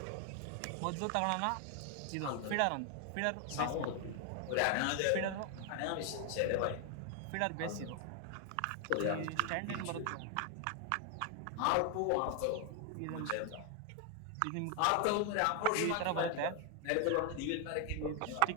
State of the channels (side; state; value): both; different; correlation 0.01